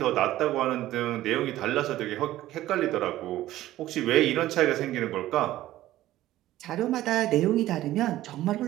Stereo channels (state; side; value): quieter; left; 14.8 dB